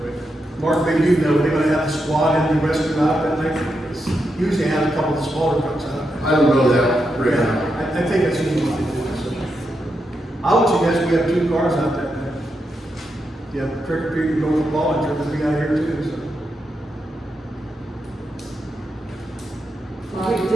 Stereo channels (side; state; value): both; normal; correlation 0.85